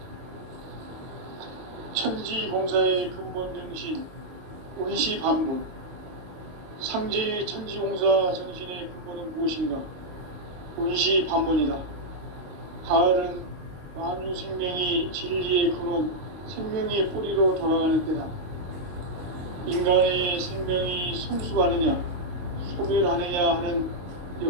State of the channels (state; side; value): late; left; 23 ms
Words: 천지공사의 근본 정신 운시반분. 상제의 천지공사 정신의 근본은 무엇인가? 운시반분이다. 가을은 만유 생명이 진리의 근원, 생명의 뿌리로 돌아가는 때다. 인간의 생명이 성숙하느냐, 소멸하느냐 하는